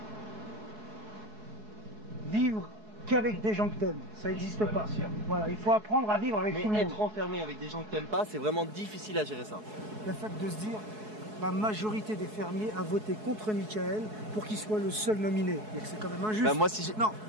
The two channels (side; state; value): left; late; 4.7 ms